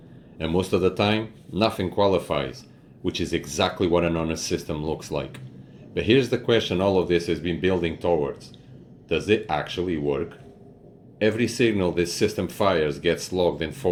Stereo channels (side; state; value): both; identical; correlation 1.00